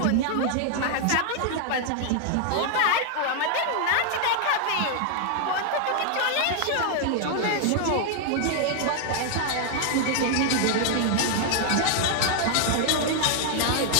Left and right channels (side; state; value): both; different; correlation 0.00